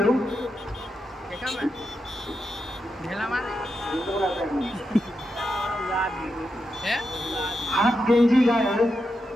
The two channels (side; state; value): both; normal; correlation 0.86